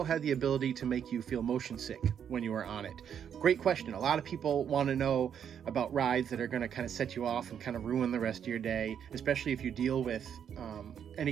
had the ability to make you feel motion sick when you were on it. Great question. A lot of people want to know about rides that are going to kind of set you off and kind of ruin the rest of your day, especially if you deal with any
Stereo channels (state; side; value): quieter; left; 8.4 dB